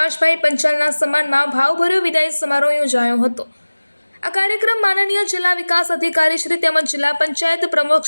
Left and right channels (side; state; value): both; inverted; correlation -1.00